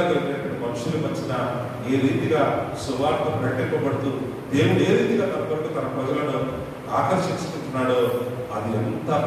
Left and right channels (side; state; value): both; identical; correlation 1.00